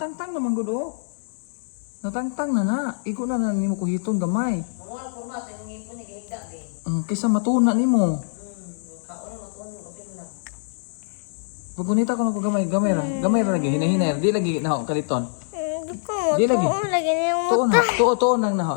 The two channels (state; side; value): silent; right; digital silence